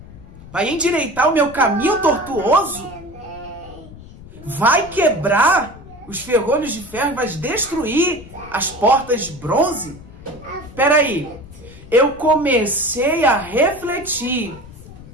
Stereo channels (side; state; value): left; noise; rumble, 18 dB below the sound